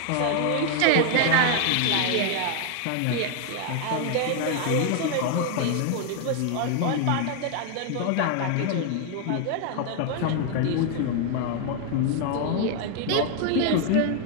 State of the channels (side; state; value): both; different; correlation 0.00